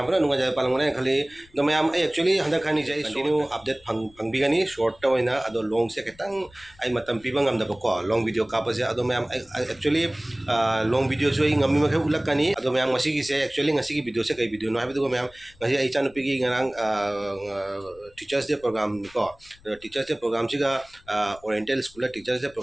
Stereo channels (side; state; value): left; noise; rumble, 27 dB below the sound